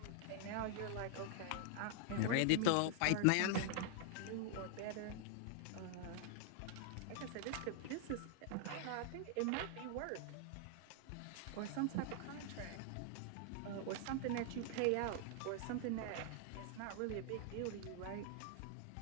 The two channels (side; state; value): both; different; correlation 0.00